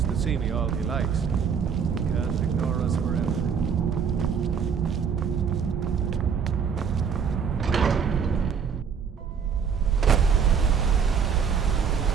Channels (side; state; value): left; quieter; 6.6 dB